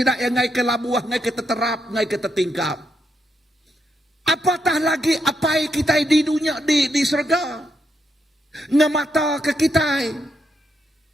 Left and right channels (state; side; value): normal; both; correlation 0.80